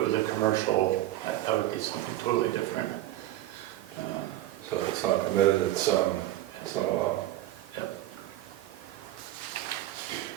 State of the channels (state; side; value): quieter; left; 14.6 dB